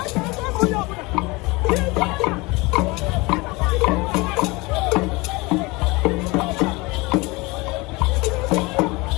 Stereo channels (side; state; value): right; quieter; 24.3 dB